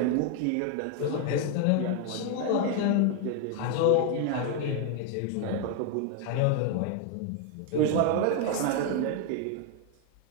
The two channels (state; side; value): different; both; correlation 0.01